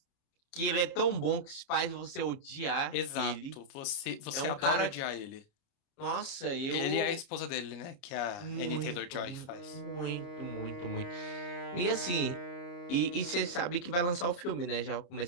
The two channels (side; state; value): right; late; 29 ms